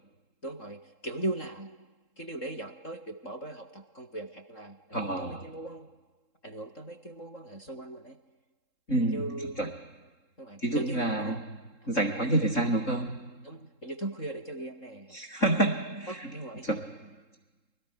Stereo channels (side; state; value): right; late; 3.7 ms